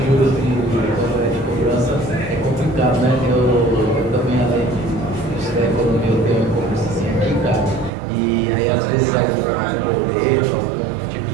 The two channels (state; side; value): drops out; left; at 7.9 s